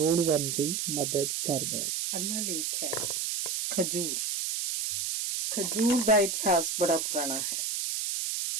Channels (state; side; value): noise; right; hiss, 1 dB below the sound